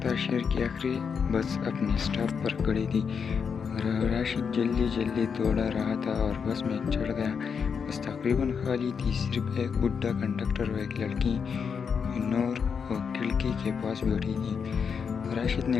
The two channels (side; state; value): right; quieter; 6.4 dB